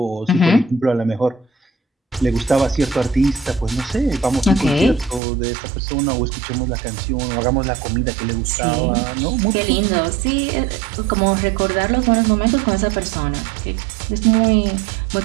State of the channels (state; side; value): drops out; left; at 5.2 s